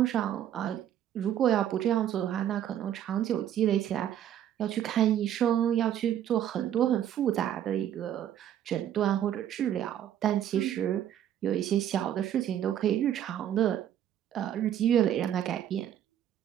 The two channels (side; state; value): left; quieter; 10.7 dB